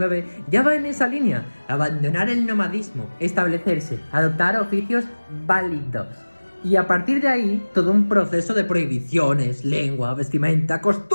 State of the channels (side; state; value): both; inverted; correlation -1.00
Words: ya va en esa línea. Abandonar el nomadismo, establecerse, adoptar oficios válidos. Y a partir de ahí, todo un proceso de prohibiciones, lengua, vestimenta,